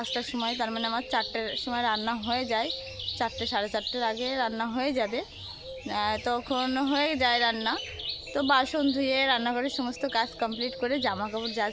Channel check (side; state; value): both; identical; correlation 1.00